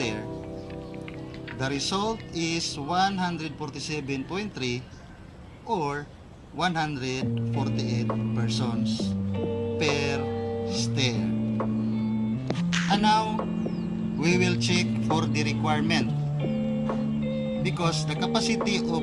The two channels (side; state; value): both; identical; correlation 1.00